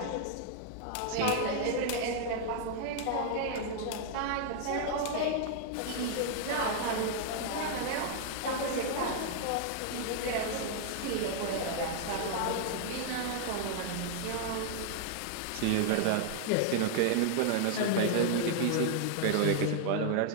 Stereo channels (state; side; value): different; both; correlation -0.01